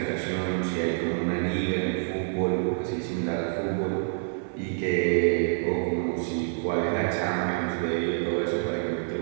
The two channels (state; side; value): silent; left; 60 dB below the other